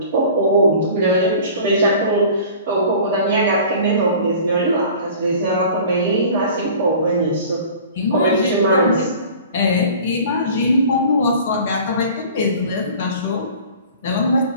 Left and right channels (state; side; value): inverted; both; correlation -0.44